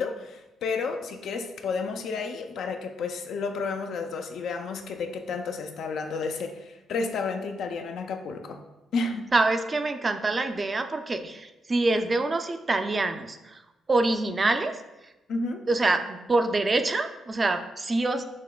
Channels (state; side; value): normal; both; correlation 0.84